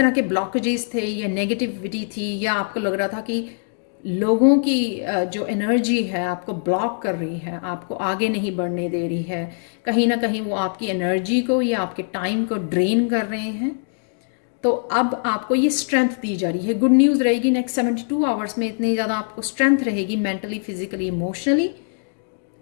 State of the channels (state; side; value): silent; right; digital silence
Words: के ब्लॉकेजेस थे या नेगेटिविटी थी, या आपको लग रहा था कि लोगों की जो एनर्जी है आपको ब्लॉक कर रही है, आपको आगे नहीं बढ़ने दे रही है, कहीं ना कहीं वो आपकी एनर्जी को या आपके टाइम को ड्रेन कर रहे हैं, तो अब आपको ये स्ट्रेंथ दी जा रही है। गुड न्यूज़ रहेगी नेक्स्ट 72 आवर्स में, इतनी ज़्यादा आपको स्ट्रेंथ रहेगी मेंटली, फिजिकली, इमोशनली।